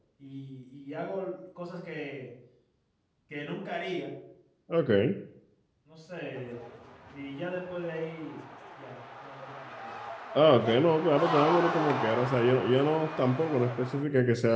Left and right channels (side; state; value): both; identical; correlation 1.00